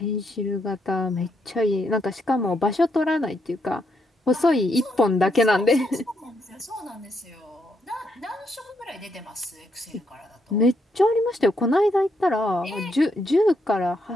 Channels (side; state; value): both; normal; correlation 0.77